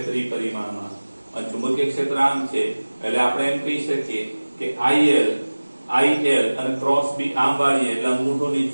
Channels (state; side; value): inverted; both; correlation -1.00